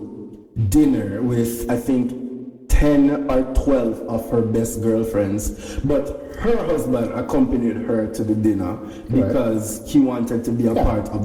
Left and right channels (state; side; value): identical; both; correlation 1.00